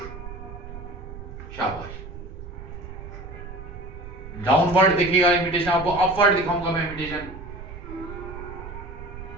शाबाश। डाउनवर्ड देखिएगा इमिटेशन, आपको अपवर्ड दिखाऊंगा मैं इमिटेशन।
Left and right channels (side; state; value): right; noise; rumble, 12 dB below the sound